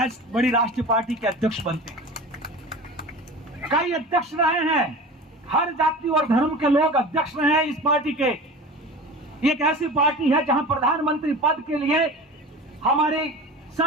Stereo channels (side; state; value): both; normal; correlation 0.35